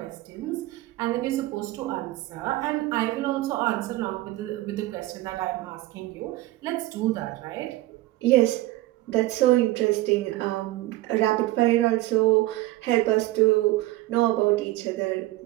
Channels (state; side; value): quieter; left; 17.5 dB